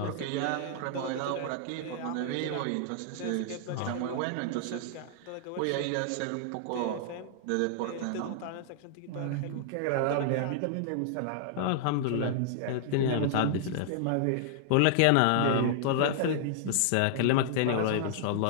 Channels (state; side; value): different; both; correlation -0.01